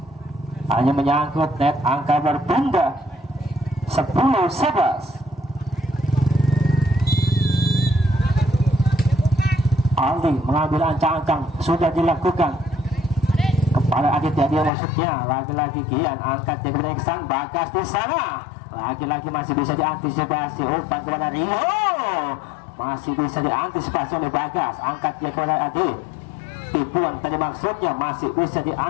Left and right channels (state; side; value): drops out; right; at 14.7 s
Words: hanya menyangkut net, angka berpindah 10-11. Aldi mengambil ancang-ancang, sudah dilakukan kepada Aditya, dia maksudnya lagi-lagi Gian, angkat dia kepada Iksan, Bagas di sana, lagi-lagi masih bisa diantisipasi, umpan kepada Rio, masih bisa diantisipasi oleh Bagas, angkat dia kepada Adi, tipuan tadi maksudnya masih bisa